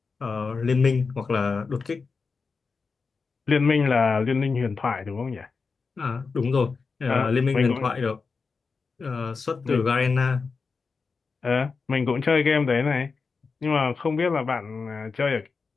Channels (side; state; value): right; quieter; 4.8 dB